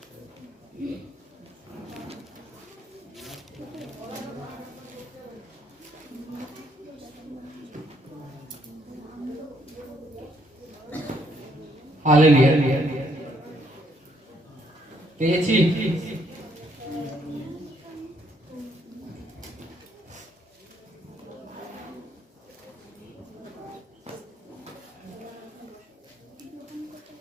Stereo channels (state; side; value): normal; both; correlation 0.70